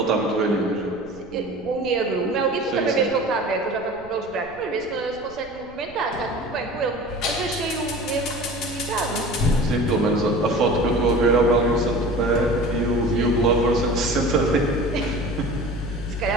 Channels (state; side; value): noise; right; rumble, 22 dB below the sound